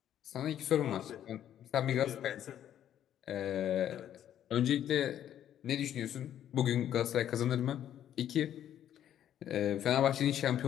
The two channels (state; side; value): quieter; right; 10.7 dB